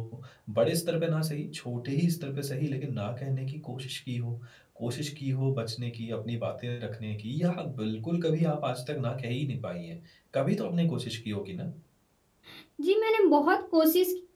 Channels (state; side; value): identical; both; correlation 1.00